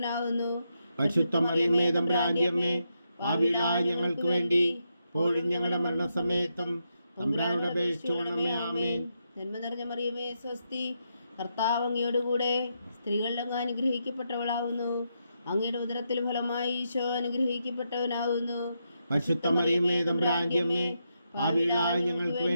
പരിശുദ്ധ മറിയമേ തമ്പുരാന്റെ അമ്മേ, പാപികളായ ഞങ്ങൾക്ക് വേണ്ടി ഇപ്പോഴും ഞങ്ങളുടെ മരണസമയത്തും തമ്പുരാനോട് അപേക്ഷിച്ചുകൊള്ളണമേ. ആമേൻ. നന്മ നിറഞ്ഞ മറിയമേ സ്വസ്തി, കർത്താവ് അങ്ങയോടുകൂടെ സ്ത്രീകളിൽ അങ്ങ് അനുഗ്രഹിക്കപ്പെട്ടവളാവുന്നു. അങ്ങയുടെ ഉദരത്തിൽ ഫലമായി ഈശോ അനുഗ്രഹിക്കപ്പെട്ടവനാവുന്നു. പരിശുദ്ധ മറിയമേ തമ്പുരാന്റെ അമ്മേ, പാപികളായ ഞങ്ങൾക്ക്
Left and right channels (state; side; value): inverted; both; correlation -0.82